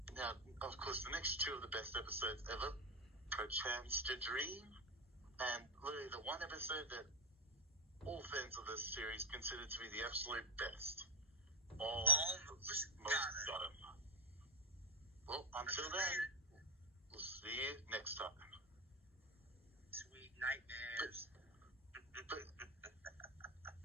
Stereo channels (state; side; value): normal; both; correlation 0.10